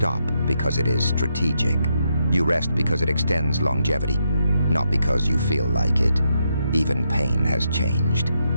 because it is strategic. You rest because it extends longevity, not because you feel like it. Even pain has changed.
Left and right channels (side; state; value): both; inverted; correlation -0.81